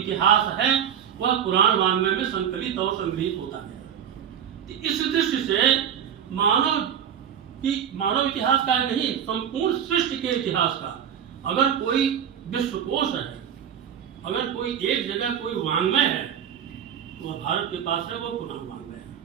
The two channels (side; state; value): left; quieter; 8.8 dB